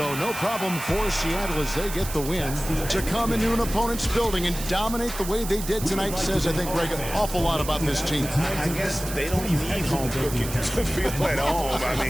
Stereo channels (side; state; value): right; noise; hiss, 9 dB below the sound